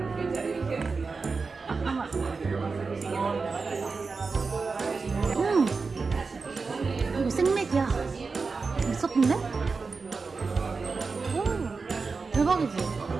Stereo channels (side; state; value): left; quieter; 4.5 dB